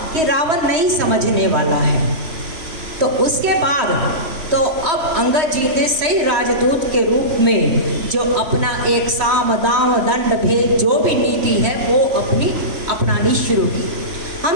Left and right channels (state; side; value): late; left; 3.1 ms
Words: कि रावण नहीं समझने वाला है तो उसके बाद तो अब अंगद जी ने सही राजदूत के रूप में जो अपना एक साम दाम दंड भेद जो भी नीति है वो अपनानी शुरू की।